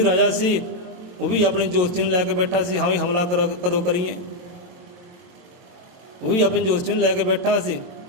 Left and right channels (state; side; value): late; left; 22 ms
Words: ਰਾਜਾ ਸੀ ਉਹ ਵੀ ਆਪਣੇ ਜੋਤਸ਼ੀ ਨੂੰ ਲੈ ਕੇ ਬੈਠਾ ਸੀ, ਹਾਂ ਵੀ ਹਮਲਾ ਕਦੋਂ ਕਰੀਏ, ਉਹ ਵੀ ਆਪਣੇ ਜੋਤਸ਼ੀ ਨੂੰ ਲੈ ਕੇ ਬੈਠਾ ਸੀ।